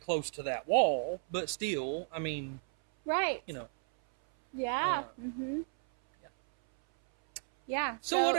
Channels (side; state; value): left; silent; 56 dB below the other